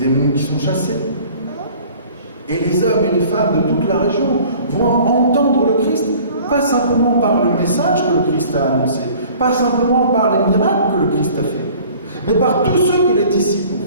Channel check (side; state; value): both; inverted; correlation -0.49